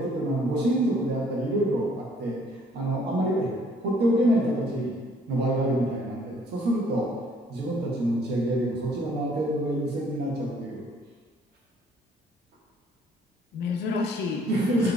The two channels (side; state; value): both; normal; correlation 0.61